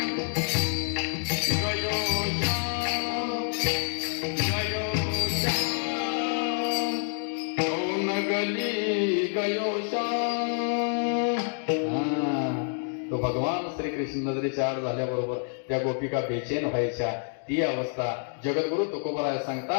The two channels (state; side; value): silent; right; 59 dB below the other